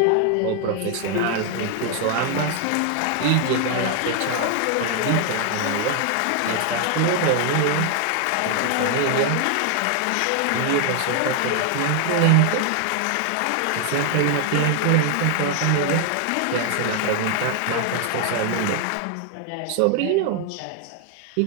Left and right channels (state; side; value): different; both; correlation 0.00